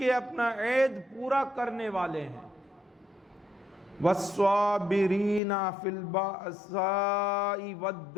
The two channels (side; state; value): right; drops out; at 5.4 s